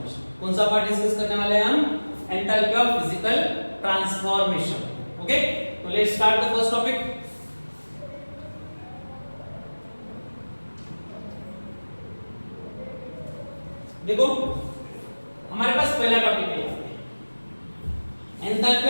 कौन सा पार्ट डिस्कस करने वाले हैं हम? Enthalpy of physical transformation. Okay, तो let's start the first topic. देखो हमारे पास पहला टॉपिक है enthalpy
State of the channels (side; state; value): both; inverted; correlation -1.00